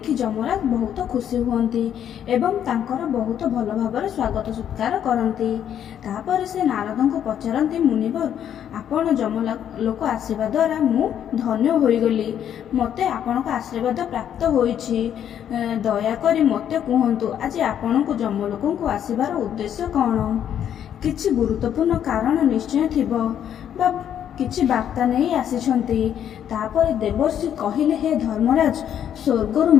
ଯମରାଜ ବହୁତ ଖୁସି ହୁଅନ୍ତି ଏବଂ ତାଙ୍କର ବହୁତ ଭଲ ଭାବରେ ସ୍ୱାଗତ ସତ୍କାର କରନ୍ତି। ତାପରେ ସେ ନାରଦଙ୍କୁ ପଚାରନ୍ତି, ମୁନିବର, ଆପଣ ଯମଲୋକ ଆସିବା ଦ୍ୱାରା ମୁଁ ଧନ୍ୟ ହୋଇଗଲି। ମୋତେ ଆପଣଙ୍କ ଆଶୀର୍ବାଦ ପ୍ରାପ୍ତ ହୋଇଛି। ଦୟାକରି ମୋତେ କୁହନ୍ତୁ, ଆଜି ଆପଣଙ୍କୁ ଯମଲୋକଙ୍କୁ ଆସିବାର ଉଦ୍ଦେଶ୍ୟ କ'ଣ? କିଛି ଗୁରୁତ୍ୱପୂର୍ଣ୍ଣ କାରଣ ନିଶ୍ଚୟ ଥିବ ବା କିଛି ବାର୍ତ୍ତା ନେଇ ଆସିଛନ୍ତି। ତାପରେ ଦେବର୍ଷି କହିଲେ, ହେ ଧର୍ମରାଜ, ସ୍ୱର୍ଗରୁ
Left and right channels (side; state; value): right; quieter; 9.7 dB